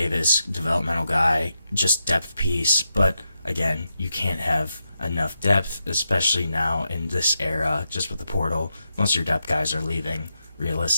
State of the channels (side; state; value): both; inverted; correlation -0.85